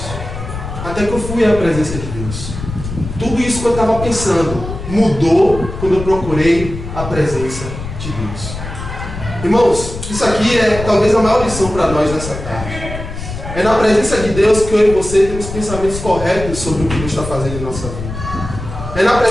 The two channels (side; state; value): left; noise; rumble, 8 dB below the sound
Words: Até que eu fui à presença de Deus. Tudo isso que eu estava pensando mudou quando eu procurei a presença de Deus. Irmãos, isso aqui é talvez a maior lição para nós nessa tarde. É na presença de Deus que eu e você temos pensamentos corretos sobre o que Deus está fazendo em nossa vida. É na